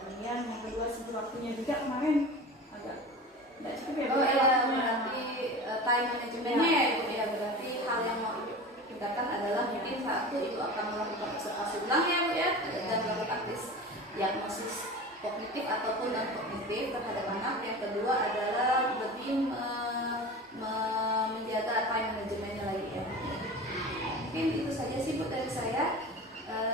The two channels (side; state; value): both; normal; correlation 0.33